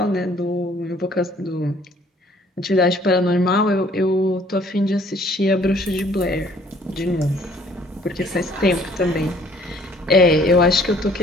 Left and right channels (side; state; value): both; normal; correlation 0.58